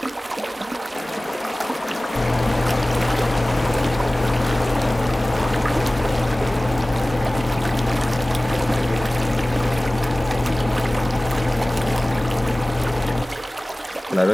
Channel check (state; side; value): normal; both; correlation 0.98